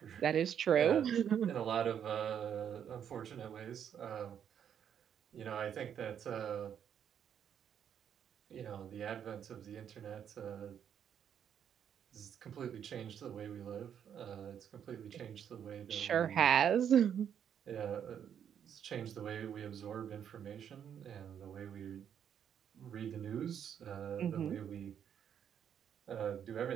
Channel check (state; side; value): quieter; left; 8.7 dB